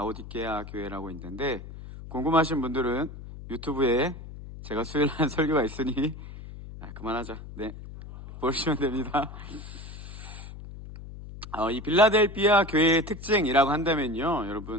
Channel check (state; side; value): noise; left; hum, 13 dB below the sound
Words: 교회라고 있는데 궁금하신 분들은 유튜브에 제가 수요일 한 설교가 있으니 그만하자. 네, 보시면 됩니다. 이 빌라델피아 교회의 특징이라고 한다면요,